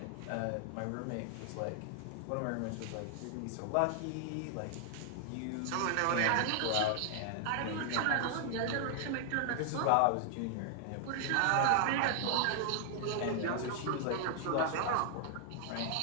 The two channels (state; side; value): different; both; correlation 0.00